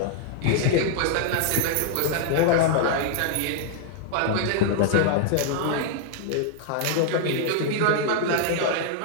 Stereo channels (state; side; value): different; both; correlation -0.01